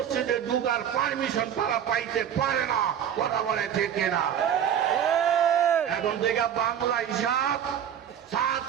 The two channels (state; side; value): quieter; left; 9.3 dB